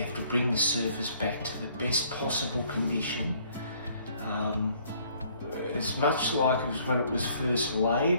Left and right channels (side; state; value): both; inverted; correlation -0.62